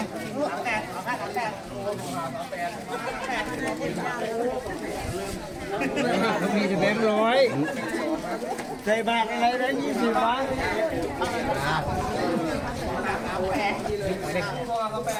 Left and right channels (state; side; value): identical; both; correlation 1.00